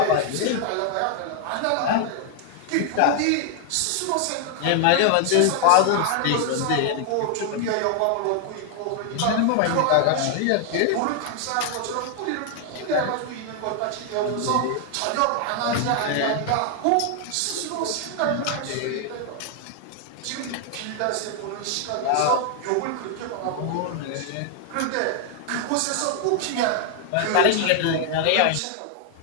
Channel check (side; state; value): both; different; correlation 0.00